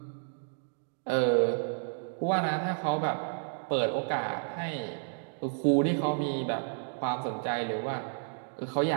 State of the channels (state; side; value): silent; left; digital silence